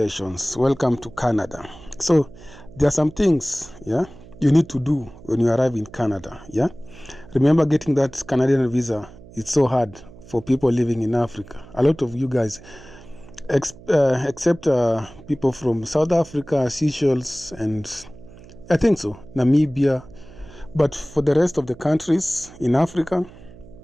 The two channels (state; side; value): noise; right; hum, 20 dB below the sound